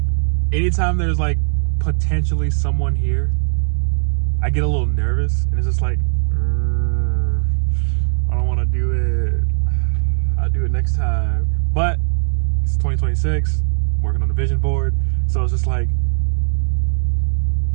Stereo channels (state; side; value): silent; left; 67 dB below the other